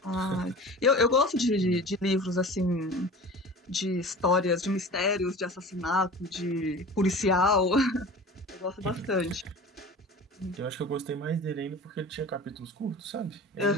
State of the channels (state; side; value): normal; both; correlation 0.37